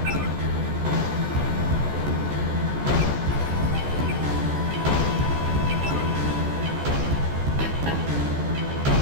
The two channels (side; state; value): left; late; 14 ms